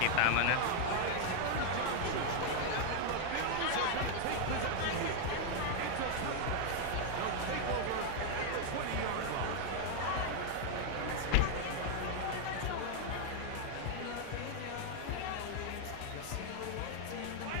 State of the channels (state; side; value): different; both; correlation 0.00